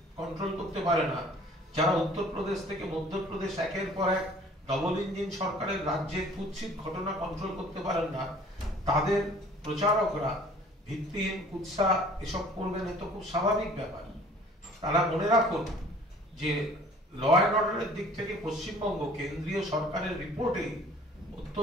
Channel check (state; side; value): normal; both; correlation 0.52